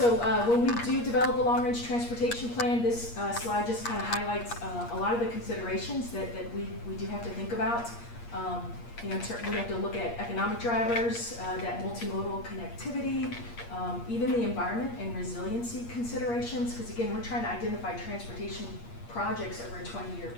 when we do develop a long-range transportation plan, this slide just kind of highlights a lot of the considerations that we do have to think about. We have to look at economic drivers, that multimodal connectivity, even the environment and resiliency considerations, because again, we're trying to identify transportation projects over a 20-year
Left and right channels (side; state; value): right; late; 8.5 ms